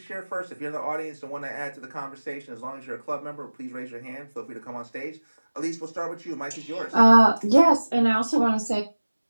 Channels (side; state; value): both; inverted; correlation -1.00